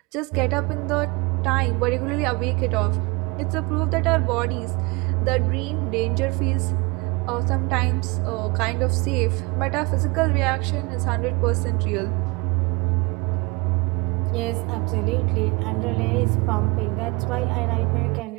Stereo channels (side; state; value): left; quieter; 26.7 dB